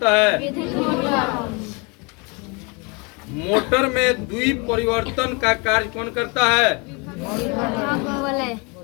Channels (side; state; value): right; quieter; 30.2 dB